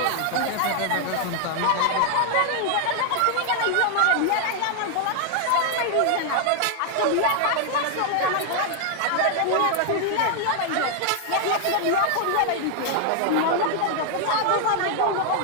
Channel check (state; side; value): different; both; correlation 0.00